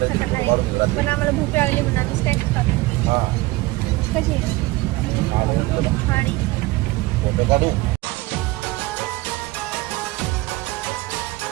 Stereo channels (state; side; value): quieter; left; 20.3 dB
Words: करणार आहे. पण आम्हाला भूक लागली म्हणून आम्ही स्नॅक्स खातो. कशी आणि